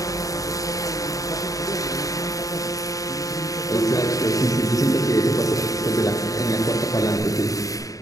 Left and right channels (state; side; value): late; right; 0.16 ms